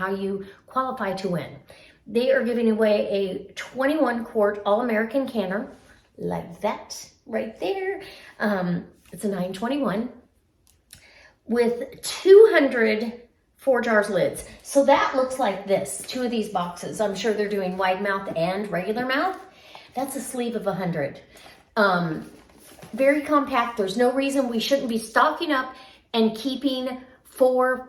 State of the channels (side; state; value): both; identical; correlation 1.00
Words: you qualify to win. They are giving away a 21 quart All-American canner, like that right there. It's a 921 with 200 4 jars lids. So that looks like this, 2 of these boxes. I'm sure they're doing wide mouth and regular mouth. That's a sleeve of 100. Very compact. There's no reason we shouldn't be stocking up and keeping